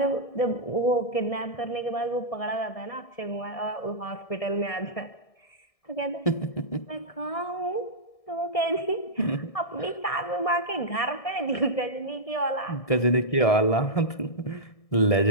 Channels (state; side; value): late; right; 1.7 ms